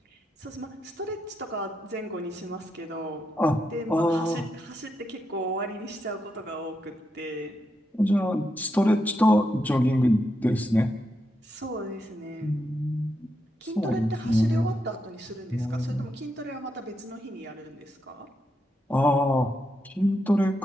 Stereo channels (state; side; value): normal; both; correlation 0.83